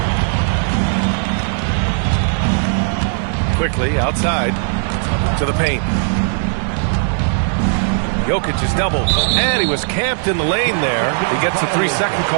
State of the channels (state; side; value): silent; left; digital silence